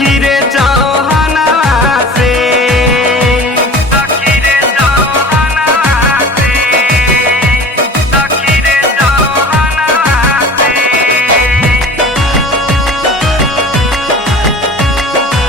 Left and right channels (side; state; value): both; normal; correlation 0.41